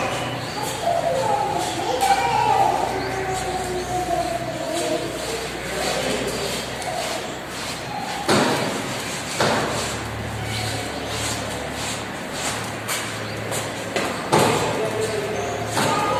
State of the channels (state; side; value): identical; both; correlation 1.00